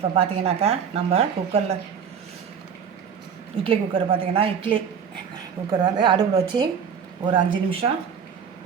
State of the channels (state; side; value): quieter; left; 7.2 dB